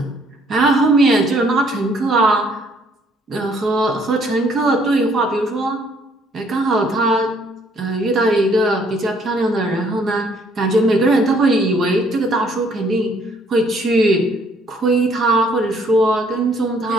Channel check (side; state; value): both; normal; correlation 0.63